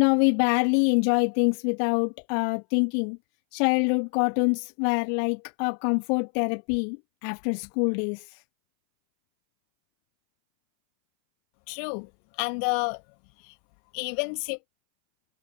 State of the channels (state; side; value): silent; right; 62 dB below the other